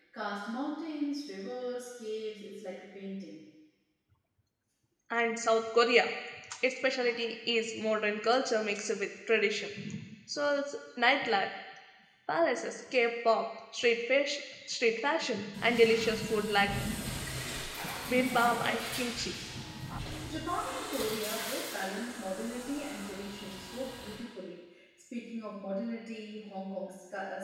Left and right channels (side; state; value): both; identical; correlation 1.00